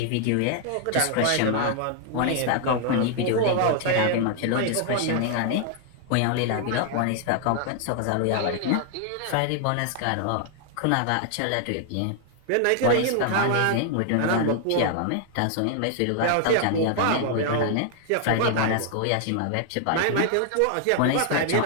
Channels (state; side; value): different; both; correlation 0.00